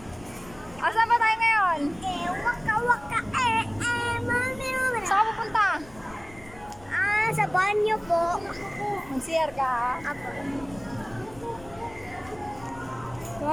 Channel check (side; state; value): left; noise; rumble, 21 dB below the sound